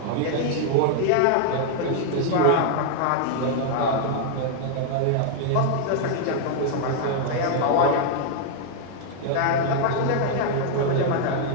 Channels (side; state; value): both; different; correlation 0.00